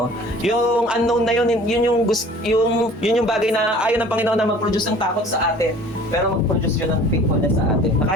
Yung unknown na yun, yun yung bagay na ayaw ng Panginoon na mag-produce ng takot sa atin, pero mag-produce yun ng faithfulness sa atin. Na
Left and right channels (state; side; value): normal; both; correlation 0.48